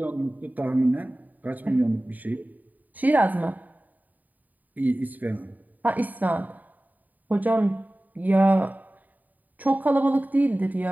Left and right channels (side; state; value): left; late; 0.082 ms